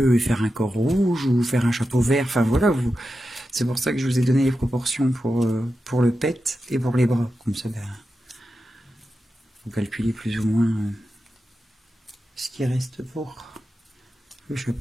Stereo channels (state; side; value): normal; both; correlation 0.91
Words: et faire un corps rouge ou faire un chapeau vert, enfin voilà, c'est pour ça que je vous ai donné les proportions pour le pet et pour les bras. Comme ça, ben, vous calculez plus ou moins ce qui reste pour le